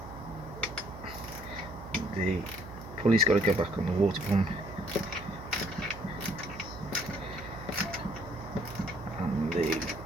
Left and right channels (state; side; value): noise; right; hum, 13 dB below the sound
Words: the pulley's got to go back on the water pump, and the